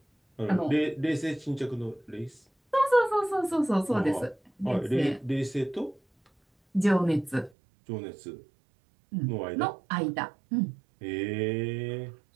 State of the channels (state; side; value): drops out; left; at 7.5 s